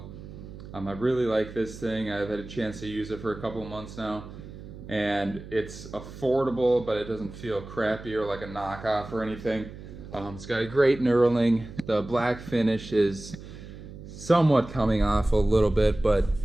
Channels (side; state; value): right; noise; hum, 14 dB below the sound